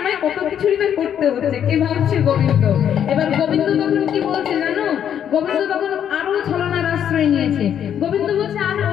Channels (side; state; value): right; quieter; 9.2 dB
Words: কত কিছুই তো করতে হচ্ছে, কে ভাবছে গোবিন্দ। এবার গোবিন্দ তখন কি বলছে জানো? গোবিন্দ তখন আরো ছলনার আশ্রয় নিয়েছে। গোবিন্দ বলছে, আর